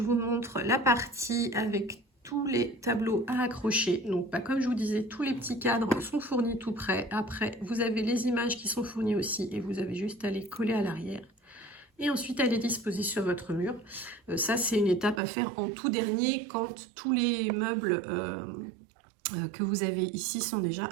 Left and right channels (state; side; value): drops out; left; at 15.2 s